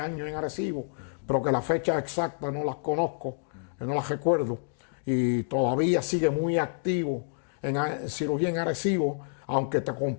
en Arecibo, pero que la fecha exacta no las conozco, no las recuerdo, y todavía sigue muy activo en cirugía en Arecibo, aunque te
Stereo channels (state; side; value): silent; right; digital silence